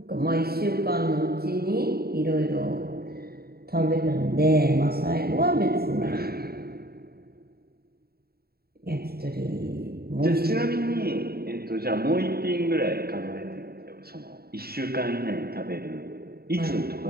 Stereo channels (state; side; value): late; left; 0.45 ms